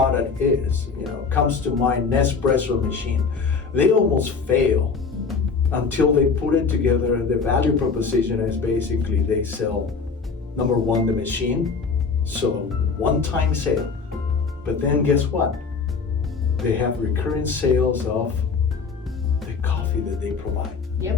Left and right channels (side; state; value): right; quieter; 5.0 dB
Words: is. Comes to mind Nespresso machine. They almost fail until they put it together. The value proposition is basically they sell, number one, the machine, so one-time sale. But then guess what? They have recurring sales of the coffee that they provide.